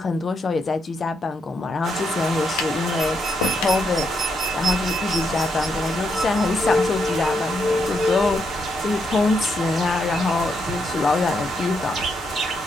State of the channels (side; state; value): both; normal; correlation 0.79